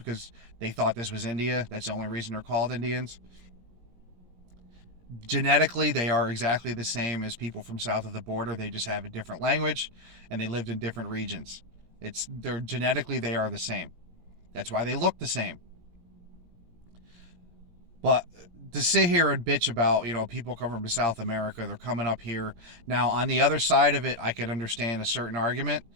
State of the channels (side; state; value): left; late; 17 ms